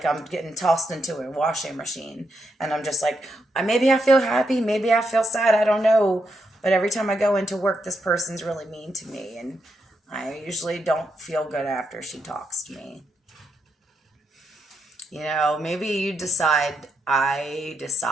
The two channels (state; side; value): normal; both; correlation 0.81